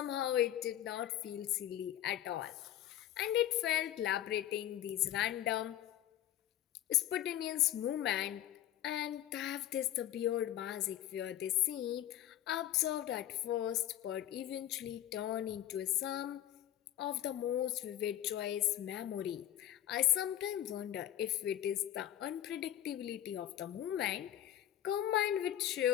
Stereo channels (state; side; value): quieter; right; 12.2 dB